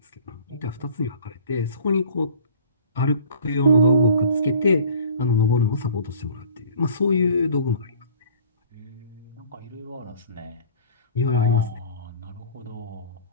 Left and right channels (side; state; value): both; inverted; correlation -0.48